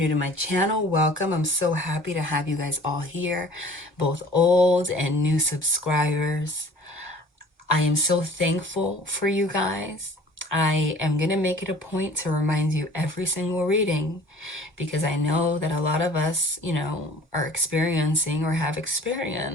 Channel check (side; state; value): both; normal; correlation 0.48